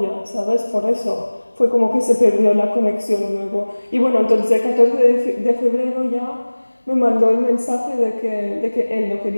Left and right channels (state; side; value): inverted; both; correlation -1.00